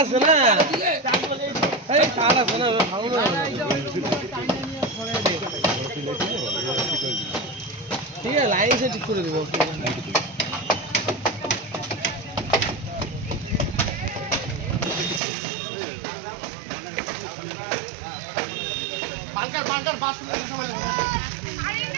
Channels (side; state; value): left; drops out; at 15.2 s